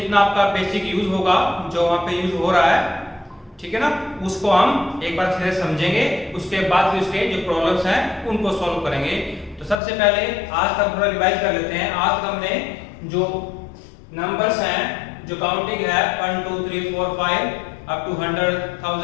आपका बेसिक यूज होगा, जो वहां पे यूज हो रहा है, ठीक है ना, उसको हम एक बार फिर समझेंगे। उसके बाद फिर उसके जो प्रॉब्लम्स हैं उनको सॉल्व करेंगे। तो सबसे पहले आज का थोड़ा रिवाइज कर लेते हैं। आज तक हमने जो नंबर्स हैं, जो काउंटिंग है 1 2 3 4 5 अप टू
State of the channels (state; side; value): drops out; right; at 9.8 s